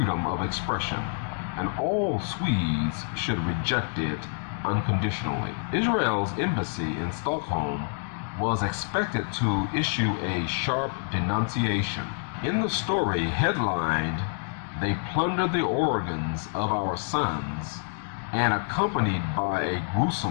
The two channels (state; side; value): silent; right; 59 dB below the other